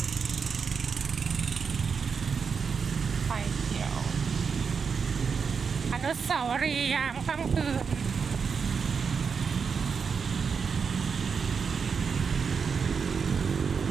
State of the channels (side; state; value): left; quieter; 5.9 dB